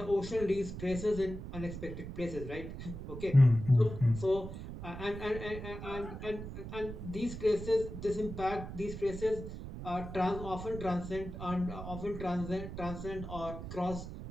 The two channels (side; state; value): right; noise; rumble, 9 dB below the sound